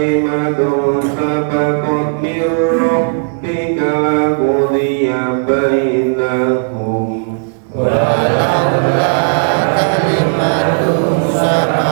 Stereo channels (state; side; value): silent; left; digital silence